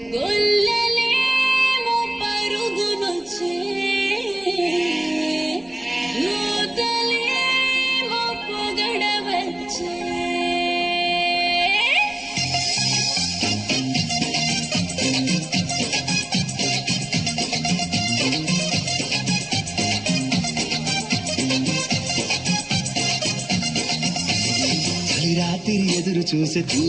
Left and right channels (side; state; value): left; noise; rumble, 30 dB below the sound